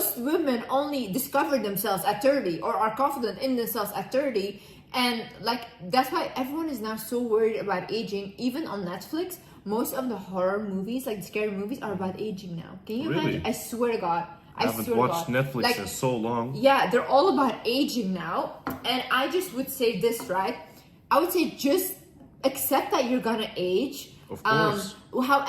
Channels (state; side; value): identical; both; correlation 1.00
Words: women only discover themselves at 30 or are confident in themselves at 30. And like, that's why everyone is now so worried about aging. Even on Netflix, most of the horror movies, like the scary movies, are about aging now. Can you imagine? I swear to God. I haven't watched Netflix in so long. Yeah, they're all about aging now. And I just would say this, right? I would say just accept that you're gonna age. Of course.